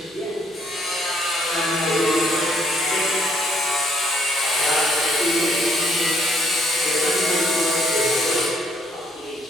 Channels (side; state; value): both; normal; correlation 0.68